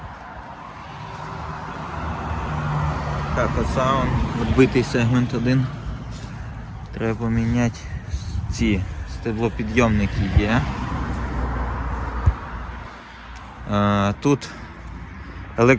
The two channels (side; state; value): both; identical; correlation 1.00